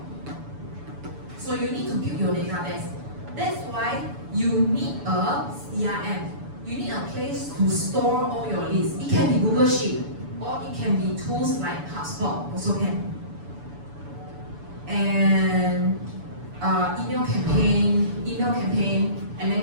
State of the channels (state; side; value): late; left; 7.0 ms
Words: So you need to build your database. That's why you need a CRM. You need a place to store all your lists. It can be Google Sheet, or it can be tools like HubSpot, also can. And email campaign, and then